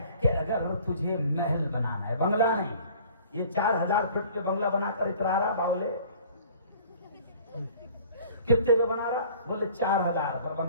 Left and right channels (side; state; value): both; inverted; correlation -0.50